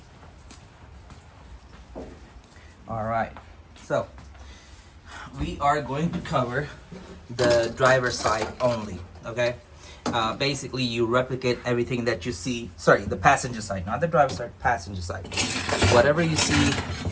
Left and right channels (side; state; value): both; identical; correlation 1.00